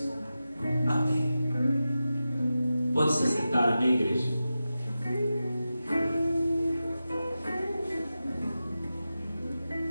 Amém. Pode se sentar, amém, igreja?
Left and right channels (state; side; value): inverted; both; correlation -0.93